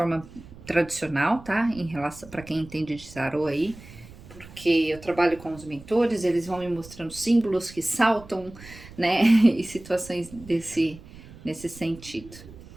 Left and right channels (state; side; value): noise; right; rumble, 18 dB below the sound